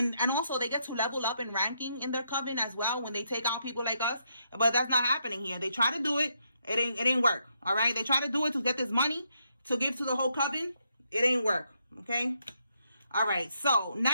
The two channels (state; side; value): inverted; both; correlation -0.78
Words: also they get to level up in ranking in their coven as well when they take out people like us. But that's not happening here. They try to do it. It ain't work. All right. They try to do it to get this money to give to the whole coven. It ain't work. Okay. All right. So